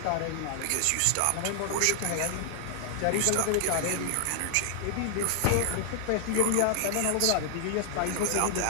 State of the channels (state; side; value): different; both; correlation -0.01